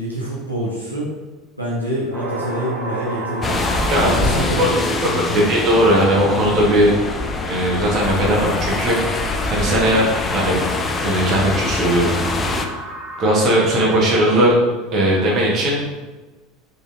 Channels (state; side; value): normal; both; correlation 0.34